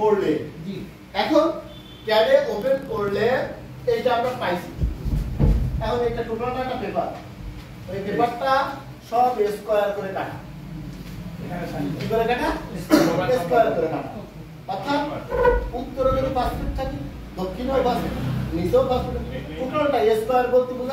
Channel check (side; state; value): both; identical; correlation 1.00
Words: জি এখন ক্যাডে ওপেন করলে এইটা আমরা পাইছি। এখন এটা টোটালটা একটা পেপার, ওই পেপারটা সব স্কয়ার করে কাটা। কি করে কাটা? স্কয়ার করে কাটা। অর্থাৎ উত্তরে যদি 5 ফিট থাকে, দক্ষিণেও 5 ফিট, নিচেও 5 ফিট, টোটালটা স্কয়ার বলতে